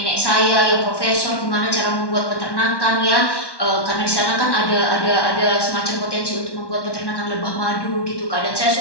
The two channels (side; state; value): right; late; 1.1 ms